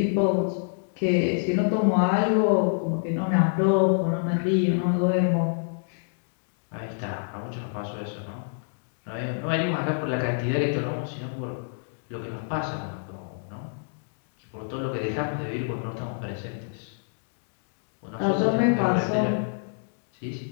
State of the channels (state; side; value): silent; right; digital silence